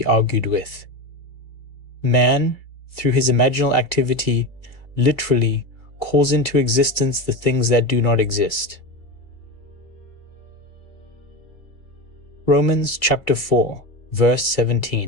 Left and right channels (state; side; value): late; right; 2.3 ms